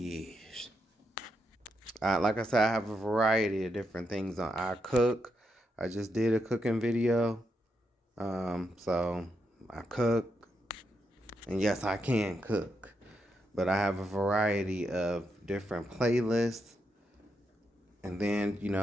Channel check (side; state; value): both; normal; correlation 0.82